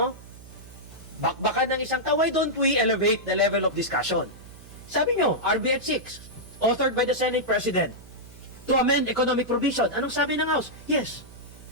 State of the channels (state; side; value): noise; right; hum, 18 dB below the sound